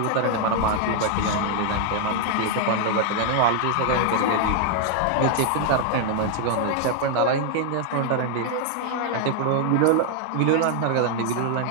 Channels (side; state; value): both; different; correlation 0.00